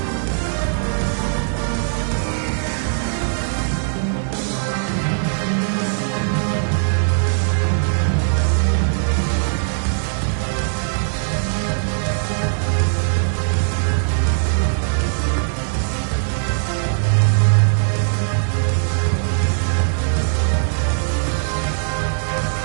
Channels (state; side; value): silent; left; digital silence